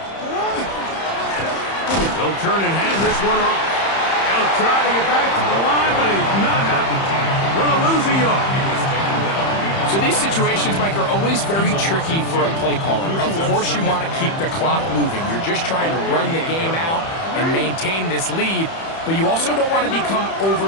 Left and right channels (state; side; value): late; right; 31 ms